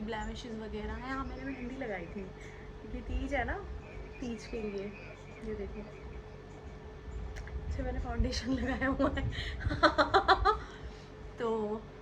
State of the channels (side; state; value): both; identical; correlation 1.00